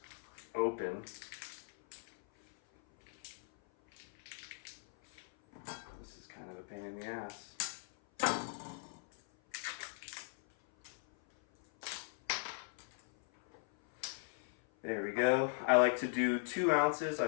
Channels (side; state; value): right; silent; 52 dB below the other